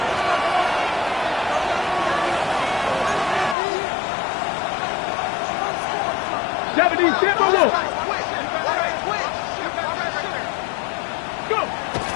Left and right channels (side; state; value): right; drops out; at 3.6 s